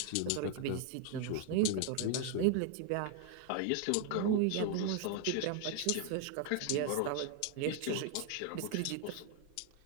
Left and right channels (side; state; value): both; different; correlation 0.00